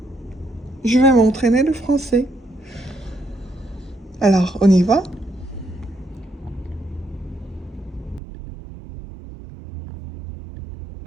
je vais m'entraîner le français. Alors, on y va?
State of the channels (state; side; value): drops out; left; at 8.2 s